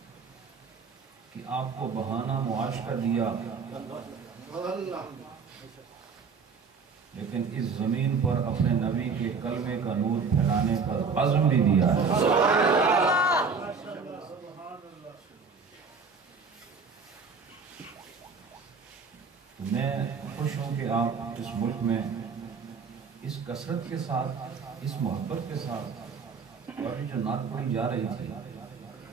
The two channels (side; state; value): left; quieter; 5.2 dB